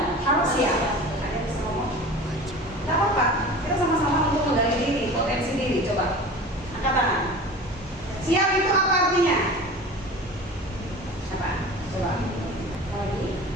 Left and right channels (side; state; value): both; normal; correlation 0.37